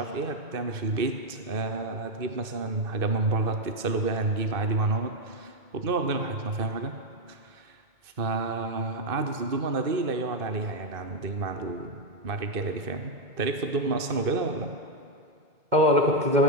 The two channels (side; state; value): left; late; 2.6 ms